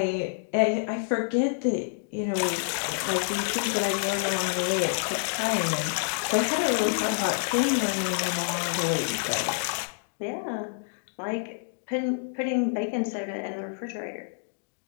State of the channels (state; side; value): silent; right; digital silence